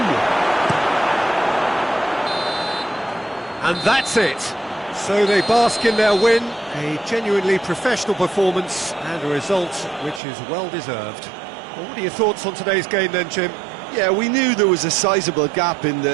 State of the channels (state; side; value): drops out; left; at 10.2 s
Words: And that's it. So they bask in their win, a genuinely professional performance and a result which is well deserved. Well, what are your thoughts on today's game then, Jim? Yeah, we knew there was a sizable gap in